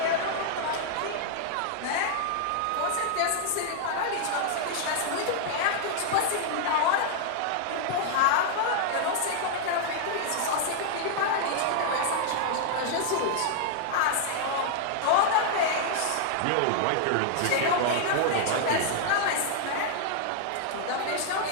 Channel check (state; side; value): different; both; correlation -0.01